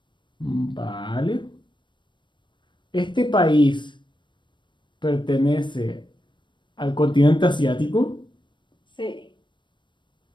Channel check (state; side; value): late; right; 0.23 ms